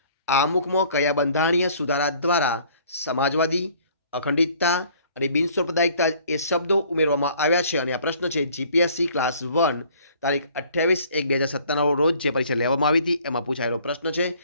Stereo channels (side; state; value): both; inverted; correlation -0.56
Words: આમુખમાં કયા બંધારણીય સુધારા દ્વારા સમાજવાદી, અખંડિતતા અને બિનસાંપ્રદાયિકતા એ શબ્દો ઉમેરવામાં આવ્યા છે? અને આ પ્રશ્ન છે જીપીએસસી ક્લાસ 1 તારીખ 28/1/2017 રોજ જે પરીક્ષા લેવામાં આવી હતી એમાં પૂછાયેલો પ્રશ્ન છે.